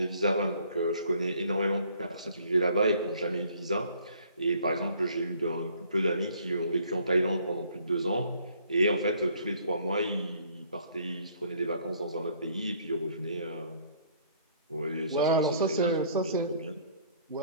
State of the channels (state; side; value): inverted; both; correlation -0.59